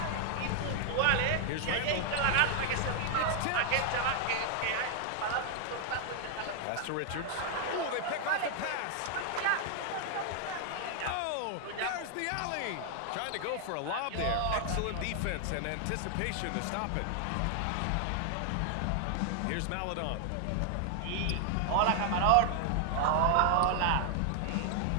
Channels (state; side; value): different; both; correlation 0.00